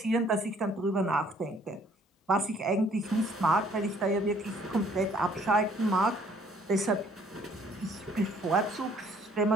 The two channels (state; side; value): normal; both; correlation 0.60